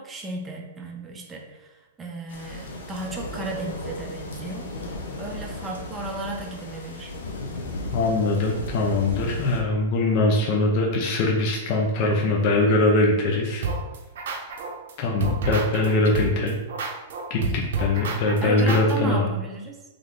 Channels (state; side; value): normal; both; correlation 0.07